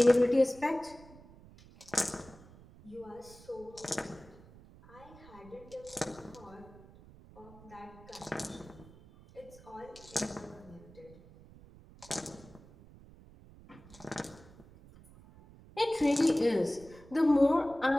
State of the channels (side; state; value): right; noise; rumble, 21 dB below the sound